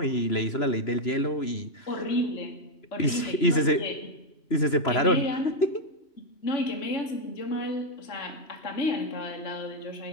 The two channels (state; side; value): late; right; 3.0 ms